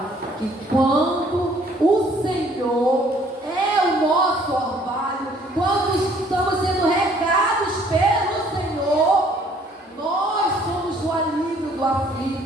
que quando o Senhor é o nosso orvalho, quando estamos sendo regados pelo Senhor, nós somos o alívio do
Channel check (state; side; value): normal; both; correlation 0.60